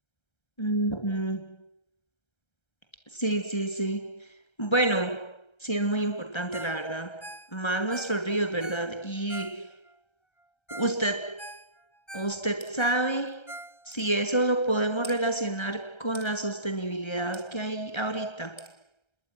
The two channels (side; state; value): right; late; 1.3 ms